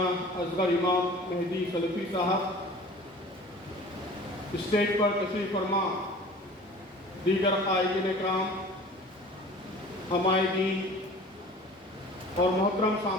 اصغر امام مہدی سلفی صاحب، اسٹیج پر تشریف فرما دیگر قائدین اکرام، حمائدین اور محترم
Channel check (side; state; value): both; normal; correlation 0.44